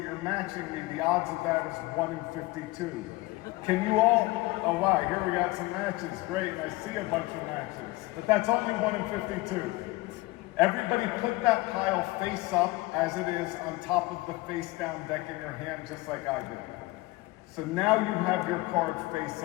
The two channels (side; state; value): right; quieter; 21.0 dB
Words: you're matching me, the odds of that is 1 in 52. Can you all, oh wow, here we got some matches, great, I see a bunch of matches, but that's only 1 in 52. Everybody put that pile face up as it is on top of the face down deck in your hand, just like I did. So now you have your card face